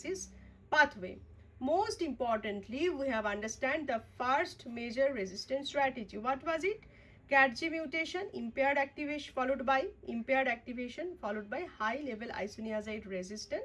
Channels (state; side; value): identical; both; correlation 1.00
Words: pathway. Most importantly, we have understand the first major resistance strategy. What was it? CAT-G mutation, impaired activation followed by high level isoniazid